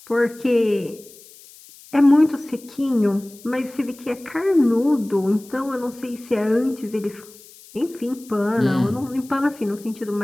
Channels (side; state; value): left; noise; hiss, 22 dB below the sound